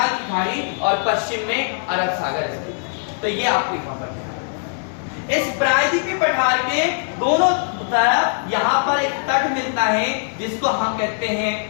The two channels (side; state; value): right; silent; digital silence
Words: की खाड़ी और पश्चिम में अरब सागर स्थित। तो ये आपको यहाँ पर है। इस प्रायद्वीपीय पठार के दोनों तरफ यहाँ पर एक तट मिलता है जिसको हम कहते हैं